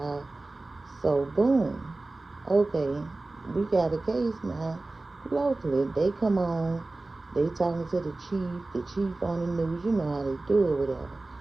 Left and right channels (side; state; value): left; quieter; 3.1 dB